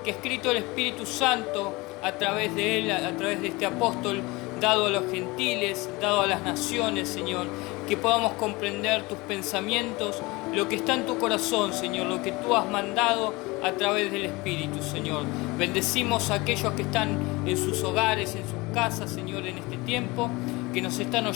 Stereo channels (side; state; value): right; quieter; 23.3 dB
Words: que ha escrito el Espíritu Santo a través de él, a través de este apóstol, dado a los gentiles, dado a las naciones, Señor, que podamos comprender tus pensamientos, lo que está en tu corazón, Señor, lo que tú has mandado a través del Espíritu, Señor. Bendecimos a aquellos que están en sus hogares, en sus casas, Señor, en este tiempo, que nos están